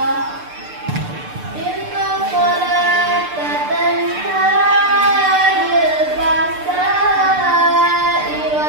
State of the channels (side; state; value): left; late; 6.7 ms